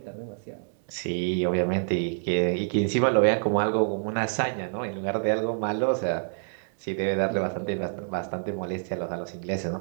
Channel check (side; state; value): left; silent; 60 dB below the other